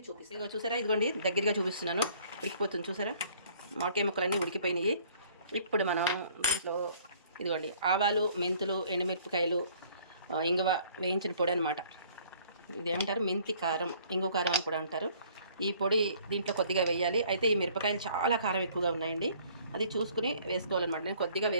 చూపిస్తాను. ఇదిగో చూసారా, ఇదిగోండి దగ్గరగా చూపిస్తున్నాను. ఉడికిపోతుంది చూసారా, మామిడికాయ ముక్కలన్నీ ఉడికిపోయినాయి. ఇప్పుడు మనం దీంట్లో ఇదిగోండి ఆవాలు, మెంతులు, ఎండుమిరపకాయలు, ఇంగువ వేయించిన పొడి అనమాట. ఇదేమంటారు, మెంతి కారం, ఇంగువ కారం అని కూడా అంటారు. ఈ పొడి దీంట్లో కొద్దిగా వేయాలి. అయితే ఈ మిరపకాయలు చాలా కారం ఎక్కువగా ఉన్నాయండి, అది చూసుకుని వేసుకోవాలన్నమాట. నేను కొద్దిగా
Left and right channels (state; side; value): inverted; both; correlation -0.57